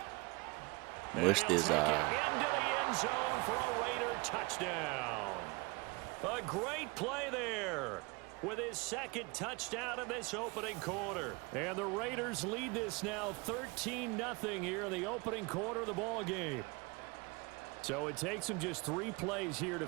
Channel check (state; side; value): quieter; left; 27.2 dB